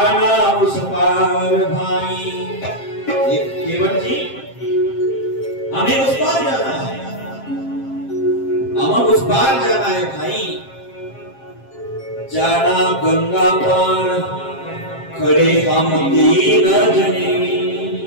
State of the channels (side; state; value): right; late; 7.5 ms